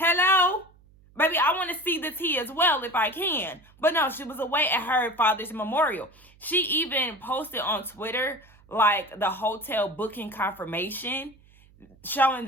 Baby, I want to see the tea as well if I can. But no, she was away at her father's memorial. She even posted on Twitter, like, the hotel booking confirmation, showing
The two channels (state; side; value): noise; right; hum, 28 dB below the sound